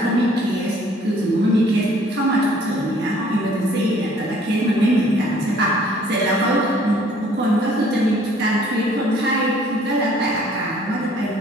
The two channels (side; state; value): both; normal; correlation 0.57